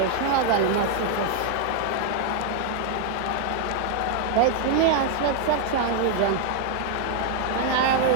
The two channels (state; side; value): different; both; correlation 0.00